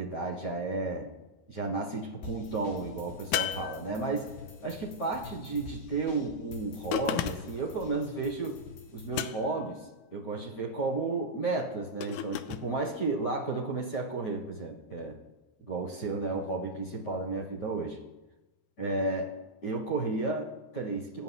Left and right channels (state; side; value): late; right; 13 ms